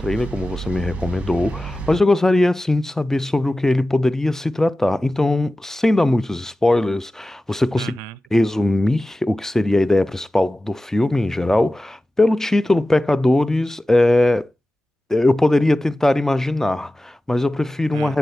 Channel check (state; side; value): normal; both; correlation 0.95